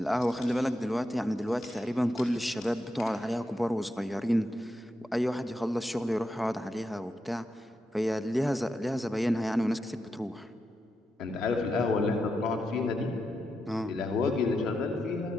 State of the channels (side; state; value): both; normal; correlation 0.86